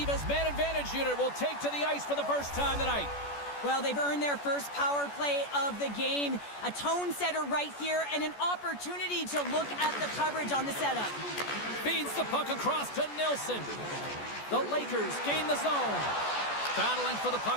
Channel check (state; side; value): late; right; 14 ms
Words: man advantage unit will take to the ice for the first time tonight. Well, they've earned their first power play of the game. A tone setter right here and an opportunity to look at the coverage on the setup. Feeds the puck across to Nilsson. The Lakers gain the zone. Battling for the